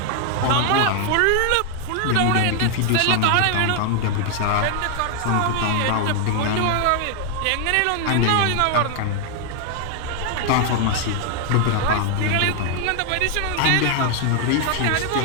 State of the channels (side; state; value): both; different; correlation 0.00